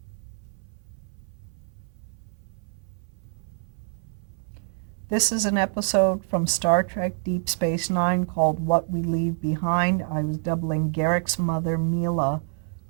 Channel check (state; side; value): silent; left; 61 dB below the other